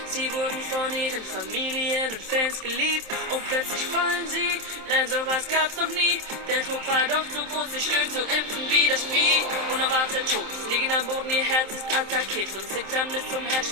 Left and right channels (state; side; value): late; left; 27 ms